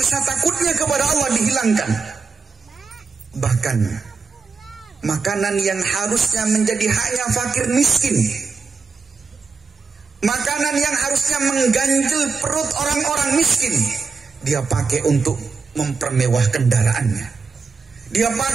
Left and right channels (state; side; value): quieter; left; 4.9 dB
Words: takutnya kepada Allah dihilangkan. Bahkan makanan yang harusnya menjadi haknya fakir miskin, makanan yang harusnya mengganjil perut orang-orang miskin, dia pakai untuk mempermewah kendaraannya, dia